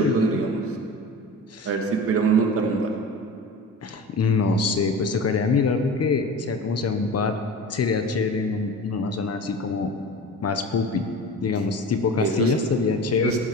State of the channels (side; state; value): both; normal; correlation 0.34